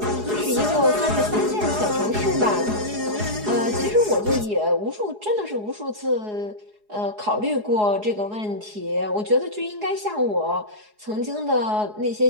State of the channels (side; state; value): left; late; 4.8 ms